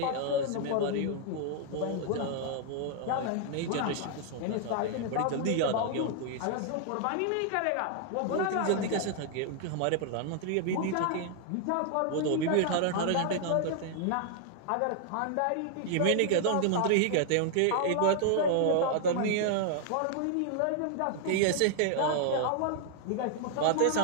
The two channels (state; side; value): different; both; correlation 0.00